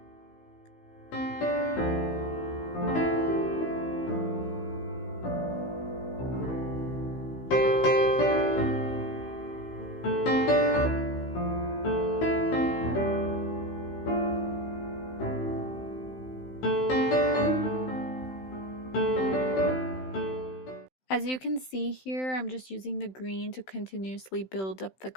As you can see here, I'm just using the green to continuously build up the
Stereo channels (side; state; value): right; late; 16 ms